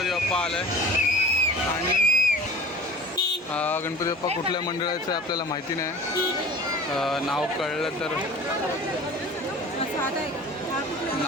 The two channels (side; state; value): both; normal; correlation 0.42